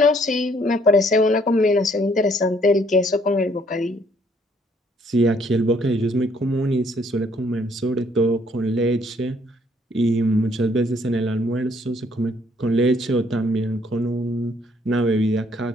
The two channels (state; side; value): normal; both; correlation 0.65